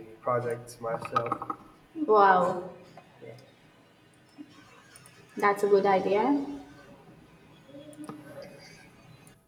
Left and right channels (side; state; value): both; identical; correlation 1.00